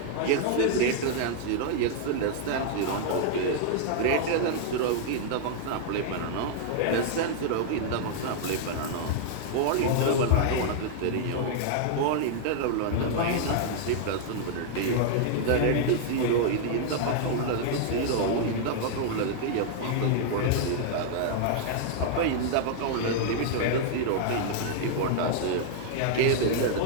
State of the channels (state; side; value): different; both; correlation -0.01